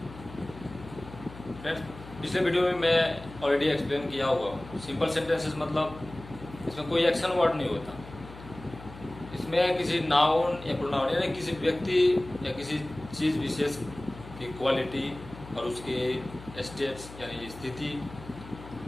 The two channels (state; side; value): noise; left; hum, 16 dB below the sound